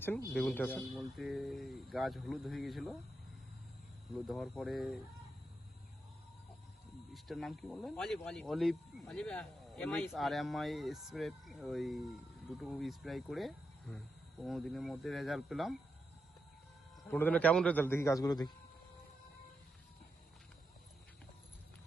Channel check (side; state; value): both; normal; correlation 0.86